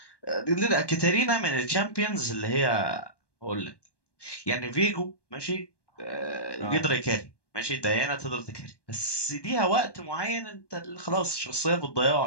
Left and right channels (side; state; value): right; late; 1.1 ms